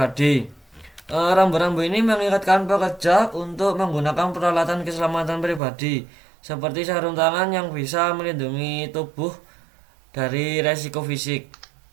Rambu-rambu ini mengingatkan pekerja untuk menggunakan peralatan keselamatan pribadi seperti sarung tangan yang bisa melindungi tubuh dari resiko fisik.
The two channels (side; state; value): left; drops out; at 5.6 s